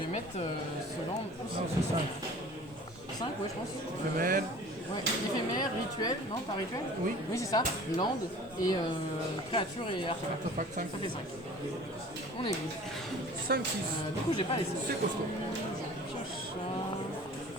mettre ce land. Non, c'est 5. 5, ouais, je pense. Éphémère. Ouais, éphémère, rituel, non, pas rituel? Oui. Oui, c'est ça. Land et créature et artefact. Artefact 5. Ça fait 5. On est good. 5, 6. Du coup, j'ai pas laissé. C'est costaud. Je pioche ça.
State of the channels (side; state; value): both; normal; correlation 0.45